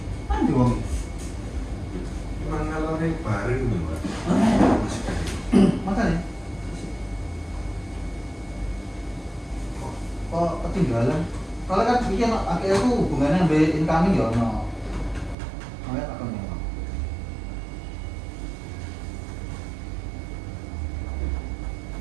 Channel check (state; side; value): drops out; left; at 15.4 s